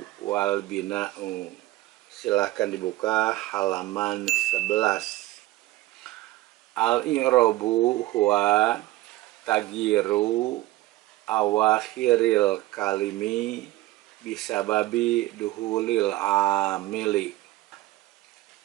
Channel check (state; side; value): quieter; left; 17.6 dB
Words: wal bina'u. Silahkan dibuka halaman 11. Al-i'rabu huwa tagyiru awakhiril kalimi bisababi duhulil amili.